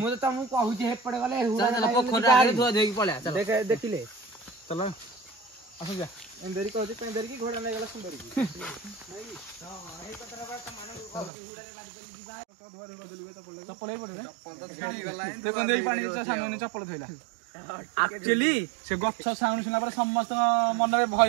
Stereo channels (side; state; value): left; drops out; at 11.3 s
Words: ତ ତମକୁ କହୁଛି ହେପଟେ ଗଲେ ପୋଖରୀ ଆଗରେ ଧୁଆ ଧୋଇକି ପଳେଆ ଦେଖିଲେ ଚଲ ଆସ ଯା ଏନ୍ଦେରି କହୁଛି ପେନ୍ଦେରି କି ଘୋଡ଼ା ନେଇଗଲା ସୁନ୍ଦରୀ କି ଚପଲ ଏଇ ପଟେ ଦେଖନ୍ତୁ ଏଇ ପାଣି ସାନୁ ଚପଲ ଥୋଇଲା ଆକ୍ଚୁଆଲି ସେ ଗଛ ସାଉଣ୍ଡ ଶୁଣିଲା ପରେ ସମସ୍ତଙ୍କ ମନରେ